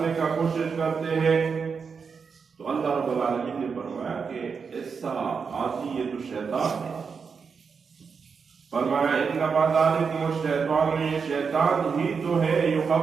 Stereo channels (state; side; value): quieter; left; 5.7 dB